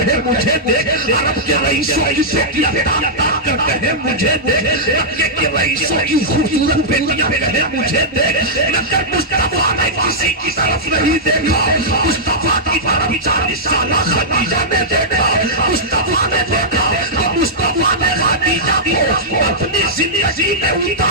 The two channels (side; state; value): both; normal; correlation -0.11